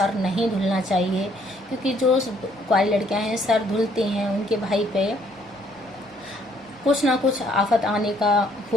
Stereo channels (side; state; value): both; normal; correlation 0.65